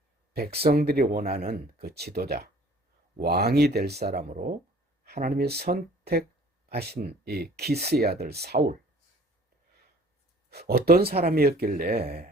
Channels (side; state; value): both; normal; correlation 0.52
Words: 백성들이 원하는 그 지도자, 왕이 될 사람으로 하나님이 선택하신 이 기스의 아들 사울, 어떤 사람이었길래